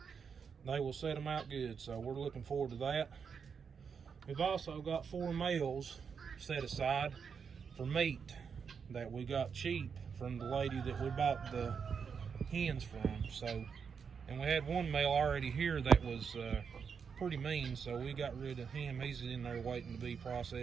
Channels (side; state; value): left; quieter; 6.3 dB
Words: they will set them out good. So we're looking forward to that. We've also got 4 males set aside for meat that we got cheap from the lady that we bought the hens from. So, and we had 1 male already here that was pretty mean, so we got rid of him. He's in there waiting to be